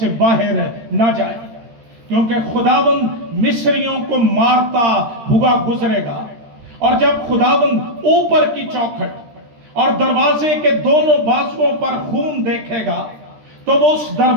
बाहर न जाए, क्योंकि खुदावंद मिस्रियों को मारता हुआ गुजरेगा। और जब खुदावंद ऊपर की चौखट और दरवाजे के दोनों बाजुओं पर खून देखेगा तो वो उस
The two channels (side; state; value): left; late; 13 ms